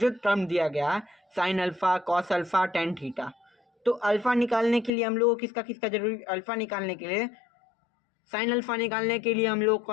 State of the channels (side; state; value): right; drops out; at 4.9 s